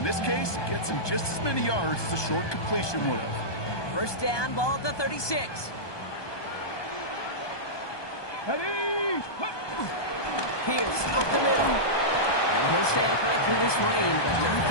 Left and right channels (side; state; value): right; late; 1.2 ms